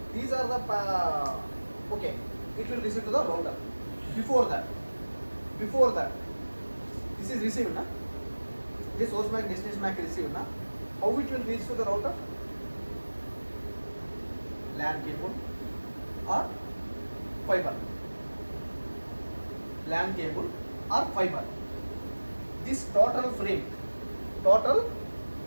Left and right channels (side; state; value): both; inverted; correlation -1.00